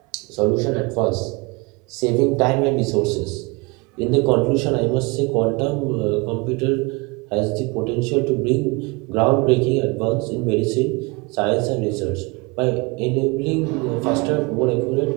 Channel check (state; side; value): quieter; left; 27.3 dB